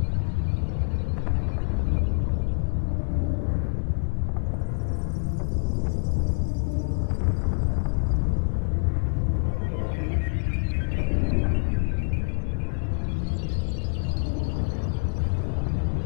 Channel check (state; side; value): silent; right; 61 dB below the other